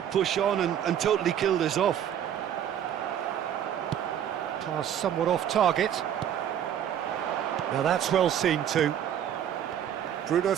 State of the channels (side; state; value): left; quieter; 9.9 dB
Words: push on and totally kill this off? Pass somewhat off target. Now that's well seen too. Bruno